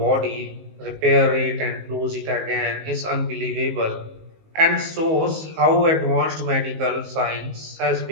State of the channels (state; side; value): late; left; 19 ms